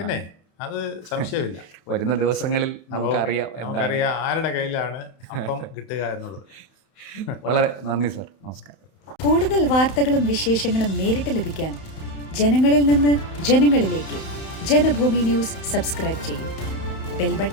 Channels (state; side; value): late; right; 31 ms